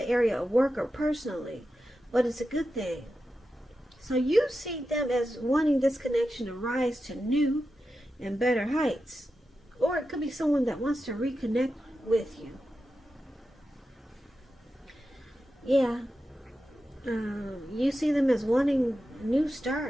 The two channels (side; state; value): both; normal; correlation 0.90